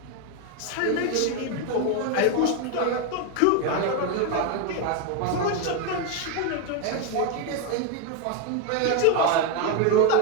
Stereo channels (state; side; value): different; both; correlation 0.02